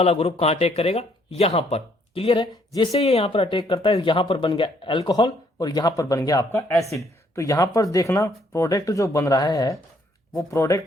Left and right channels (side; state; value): both; normal; correlation 0.67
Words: ग्रुप कहां अटैक करेगा, यहां पर। क्लियर है? जैसे ये यहां पर अटैक करता है यहां पर बन गया अल्कोहल और यहां पर बन गया आपका एसिड। तो यहां पर देखना प्रोडक्ट जो बन रहा है वो